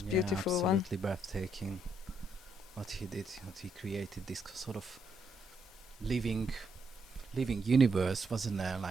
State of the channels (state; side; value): normal; both; correlation 0.75